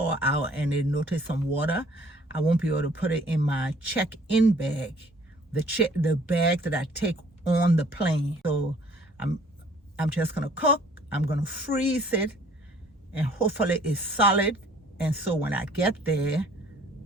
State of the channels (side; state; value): both; normal; correlation 0.56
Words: out and they notice some water, I won't be able to put it in my check-in bag, the bag that I take on the plane. So I'm just gonna cook, I'm gonna freeze it, and hopefully it's solid. And so when I get there,